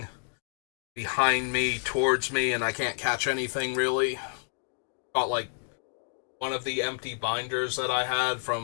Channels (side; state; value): right; silent; digital silence